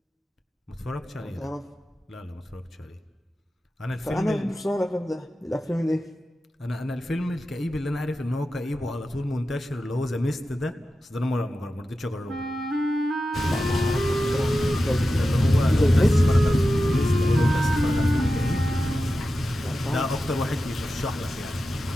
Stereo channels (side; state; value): both; normal; correlation 0.92